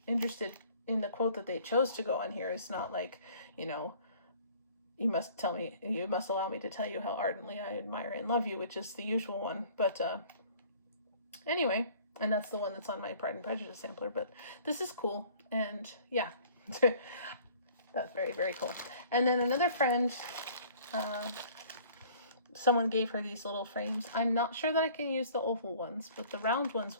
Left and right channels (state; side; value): inverted; both; correlation -0.52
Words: interested in the quote that they chose to go on here. It's not like, you know, you must allow me to tell you how ardently I admire and love you, which is the usual one. But anyway, and that's the one that's on my Pride and Prejudice sampler. But this is cool, and yeah, that's very, very cool. And then another friend, someone gave her these little frames. I'm not sure that I can use the oval ones, but the round ones